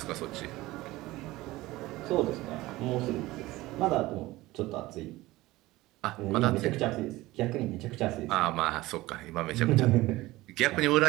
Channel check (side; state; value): left; quieter; 18.6 dB